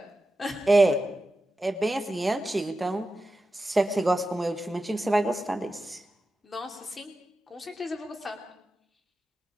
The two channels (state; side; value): normal; both; correlation 0.92